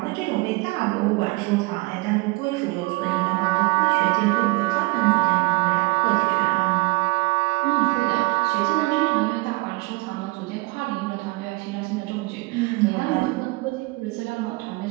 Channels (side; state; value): left; quieter; 24.2 dB